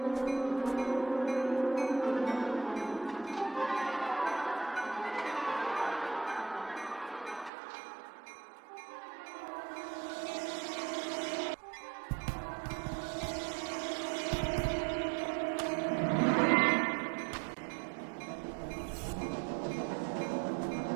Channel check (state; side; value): drops out; left; at 7.5 s